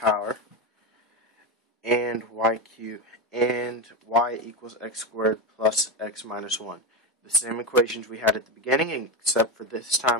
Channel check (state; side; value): normal; both; correlation 0.15